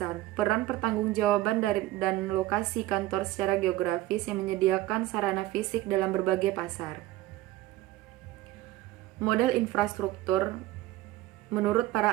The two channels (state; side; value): quieter; left; 16.2 dB